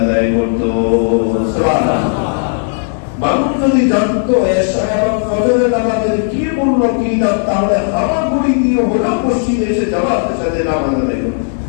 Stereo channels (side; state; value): right; silent; digital silence